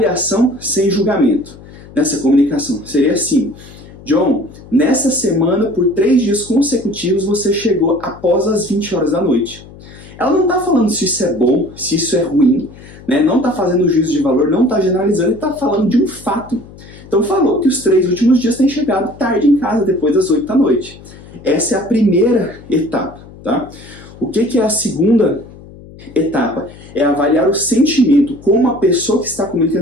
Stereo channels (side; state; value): left; noise; hum, 19 dB below the sound